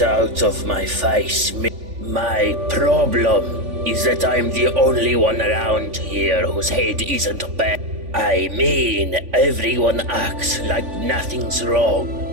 out of my face. My problem is that I'm the only one around here whose head isn't bad. I mean, everyone acts like nothing's wrong.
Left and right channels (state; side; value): late; left; 3.5 ms